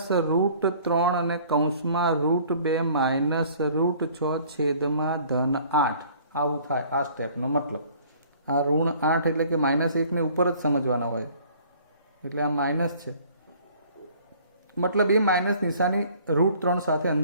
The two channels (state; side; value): inverted; both; correlation -0.54